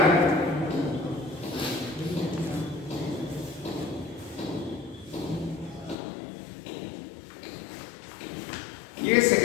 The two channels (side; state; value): right; drops out; at 6.0 s